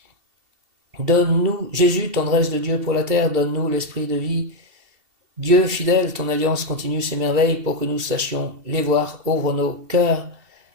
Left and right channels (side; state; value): left; late; 2.7 ms